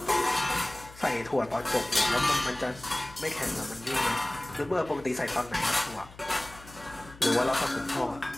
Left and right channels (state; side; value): noise; left; hum, 20 dB below the sound